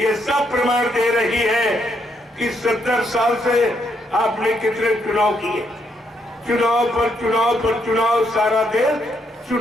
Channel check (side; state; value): both; normal; correlation 0.76